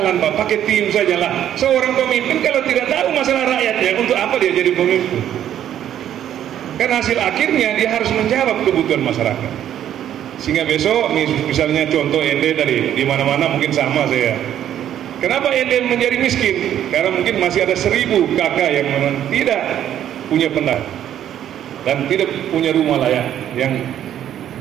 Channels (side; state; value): left; quieter; 10.8 dB